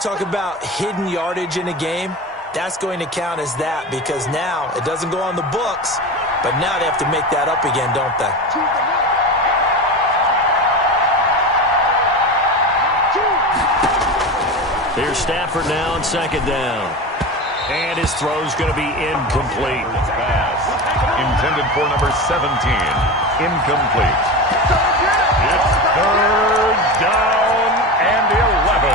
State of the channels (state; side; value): normal; both; correlation 0.25